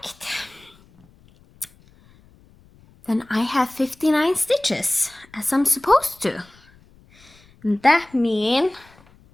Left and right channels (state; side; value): noise; left; rumble, 28 dB below the sound